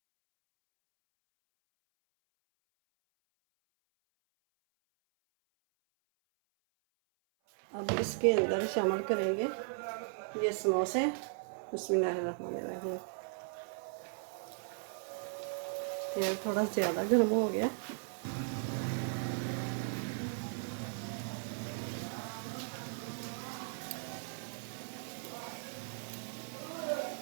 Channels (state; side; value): silent; left; 53 dB below the other